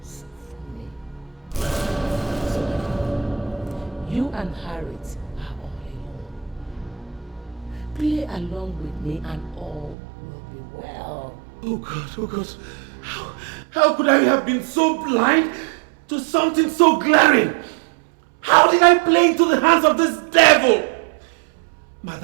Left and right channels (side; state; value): left; drops out; at 10.0 s